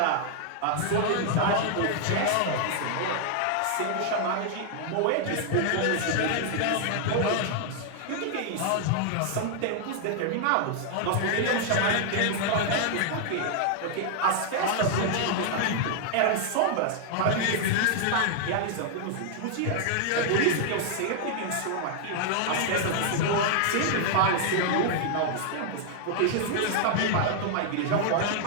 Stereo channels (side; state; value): both; different; correlation 0.00